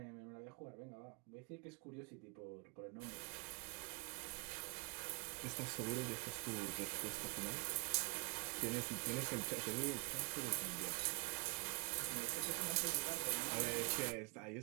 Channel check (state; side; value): quieter; left; 34.1 dB